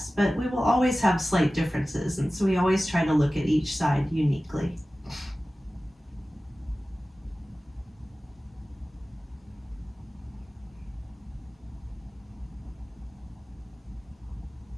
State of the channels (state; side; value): normal; both; correlation 0.96